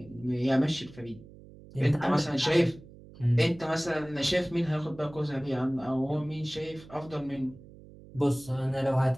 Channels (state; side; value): noise; right; hum, 20 dB below the sound